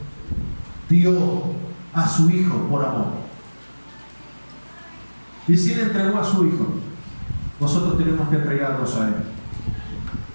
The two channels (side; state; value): both; inverted; correlation -1.00